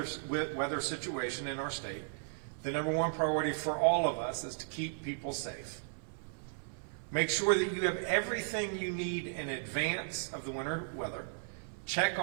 situation in our state, the number one priority for all of us is to keep people safe. Make sure that you have everything you need in advance of the winter weather. Check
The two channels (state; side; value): silent; left; 54 dB below the other